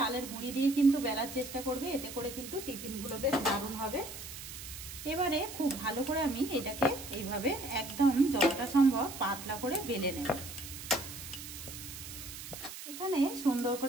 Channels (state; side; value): noise; right; hiss, 11 dB below the sound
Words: গুঁড়ি দিয়ে কিন্তু বেলার চেষ্টা করবে, এতে করে কিন্তু টিফিনগুলো বেশ দারুণ হবে। এবারে খুব ভালো করে আমি এটাকে এইভাবে একদম যতটা সম্ভব পাতলা করে বেলে নেব। এখানে সুন্দর